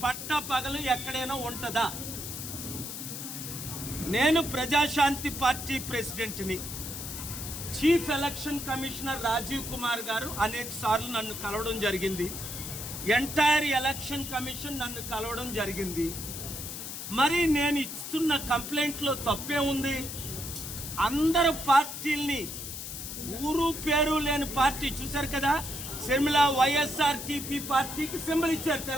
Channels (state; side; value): noise; left; hiss, 7 dB below the sound